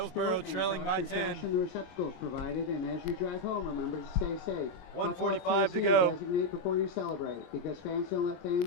sport trailing and by toss your 10. trash in the receptacles provided, and as you drive home, remember to stay safe. 1:45 to Buckle up, go. Tennessee, designate before you celebrate, because fans don't let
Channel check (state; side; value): late; right; 22 ms